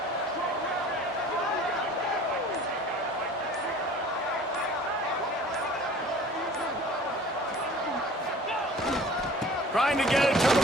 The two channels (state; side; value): normal; both; correlation 0.46